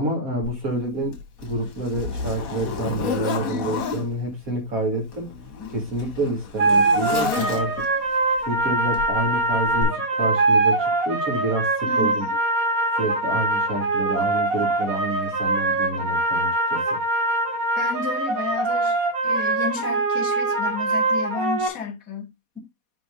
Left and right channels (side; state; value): left; late; 4.2 ms